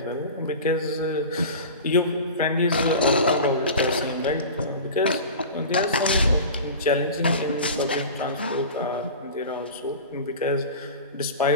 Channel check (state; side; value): inverted; both; correlation -0.34